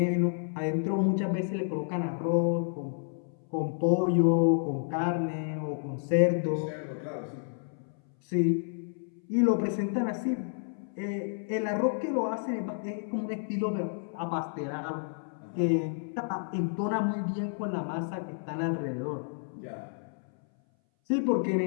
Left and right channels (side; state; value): right; silent; 58 dB below the other